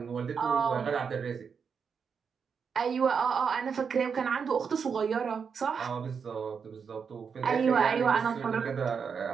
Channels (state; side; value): quieter; left; 6.2 dB